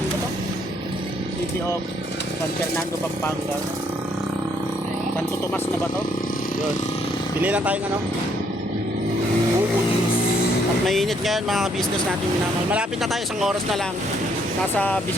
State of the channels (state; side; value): normal; both; correlation 0.69